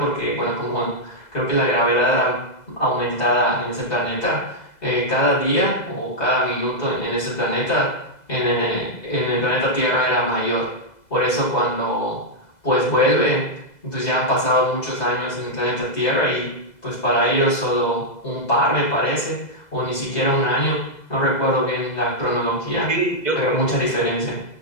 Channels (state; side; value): late; right; 2.0 ms